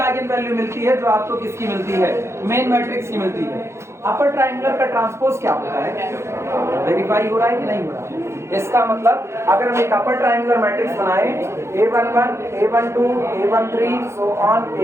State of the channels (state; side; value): late; left; 0.13 ms